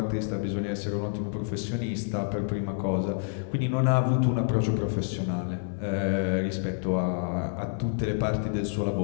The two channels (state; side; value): silent; right; 59 dB below the other